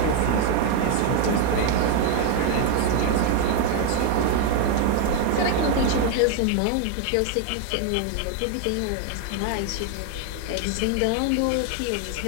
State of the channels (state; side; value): different; both; correlation 0.01